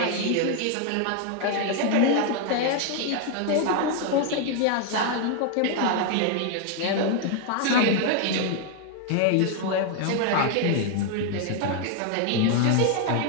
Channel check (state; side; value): different; both; correlation 0.01